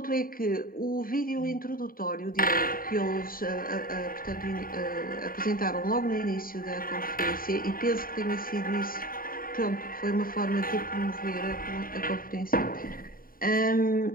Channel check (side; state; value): right; late; 0.41 ms